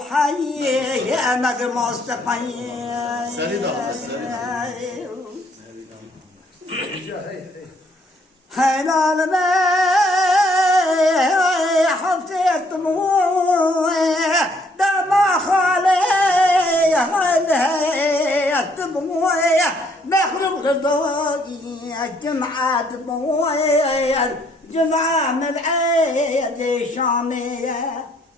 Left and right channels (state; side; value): normal; both; correlation 0.66